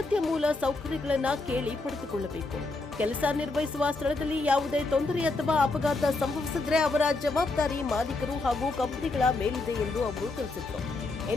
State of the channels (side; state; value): right; quieter; 3.3 dB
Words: ಮೂಲ ಸೌಕರ್ಯಗಳನ್ನು ಕೇಳಿ ಪಡೆದುಕೊಳ್ಳಬೇಕು. ಕೆಲಸ ನಿರ್ವಹಿಸುವ ಸ್ಥಳದಲ್ಲಿ ಯಾವುದೇ ತೊಂದರೆ ಅಥವಾ ಅಪಘಾತ ಸಂಭವಿಸಿದರೆ ಅವರ ಜವಾಬ್ದಾರಿ ಮಾಲೀಕರು ಹಾಗೂ ಕಂಪನಿಗಳ ಮೇಲಿದೆ ಎಂದು ಅವರು ತಿಳಿಸಿದರು.